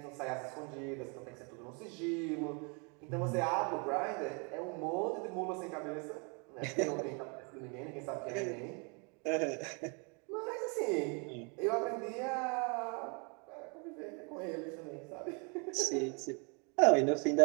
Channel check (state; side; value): quieter; left; 34.5 dB